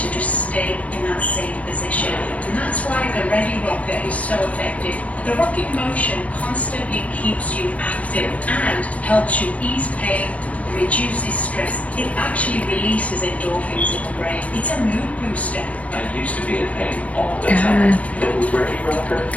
just stay in that same position. And that's why the Ready Rocker is so effective. The rocking motion constantly keeps you active and helps you ease pain, reduces stress. It actually releases endorphins in the brain. It's a mood booster. I used to be in pain all the time. But with Ready Rocker,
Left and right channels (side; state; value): right; late; 0.067 ms